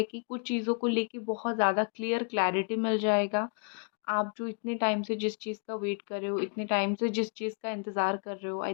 कि कुछ चीज़ों को लेके बहुत ज़्यादा क्लैरिटी मिल जाएगा। आप जो इतने टाइम से जिस चीज़ का वेट कर रहे हो, इतने टाइम से जिस चीज़ का इंतज़ार कर रहे हो, आई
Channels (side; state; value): right; quieter; 39.3 dB